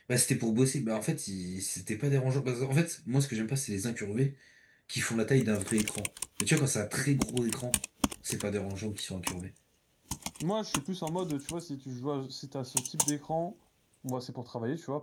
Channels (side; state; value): both; identical; correlation 1.00